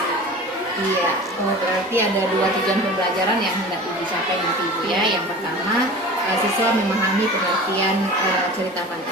Iya, berarti ada 2 tujuan pembelajaran yang hendak dicapai nanti Ibu ya. Yang pertama, siswa memahami pengertian cerita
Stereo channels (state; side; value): normal; both; correlation 0.37